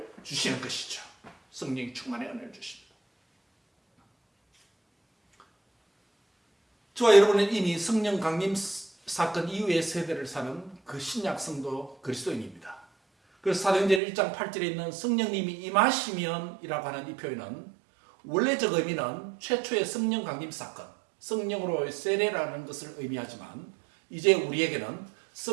주시는 것이죠. 성령이 충만의 은혜를 주십니다. 저와 여러분은 이미 성령 강림 사건 이후의 세대를 사는 그 신약 성도 그리스도인입니다. 그래서 사도행전 1장 8절에 있는 성령님이 임하시면 이라고 하는 이 표현은 원래적 의미는 최초의 성령 강림 사건, 성령으로의 세례라는 것을 의미하지만 이제 우리에게는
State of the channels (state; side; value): drops out; left; at 14.0 s